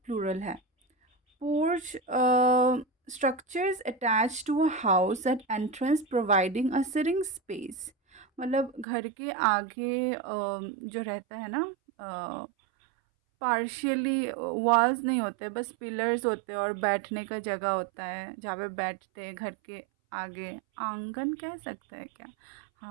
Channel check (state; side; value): drops out; left; at 8.8 s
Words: प्लूरल है। Porch structures attached to a house at entrance providing a sitting space। मतलब घर के आगे जो रहता है ना, पार्शियली वॉल्स नहीं होते, बस पिलर्स होते हैं और बैठने का जगह होता है जहाँ पे बैठते हैं घर के आगे। आंगन कह सकते हैं क्या?